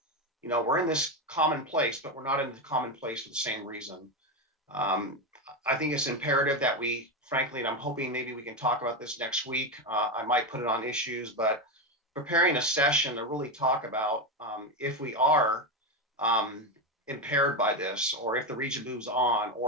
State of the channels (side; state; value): both; normal; correlation 0.12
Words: you know, we're in this common place, but we're not in the common place for the same reason. I think it's imperative that we, frankly, and I'm hoping maybe we can talk about this next week. I might put it on issues, but preparing a session to really talk about if we are impaired by this, or if the region moves on,